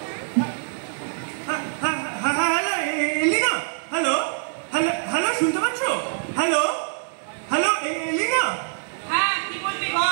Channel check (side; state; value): left; silent; 62 dB below the other